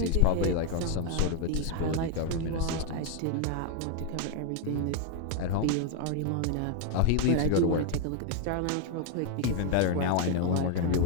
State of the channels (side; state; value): both; different; correlation 0.00